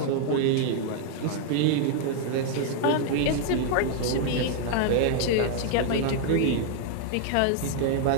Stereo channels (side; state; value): both; different; correlation 0.00